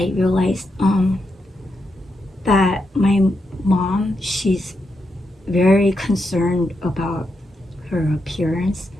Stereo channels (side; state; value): both; normal; correlation 0.84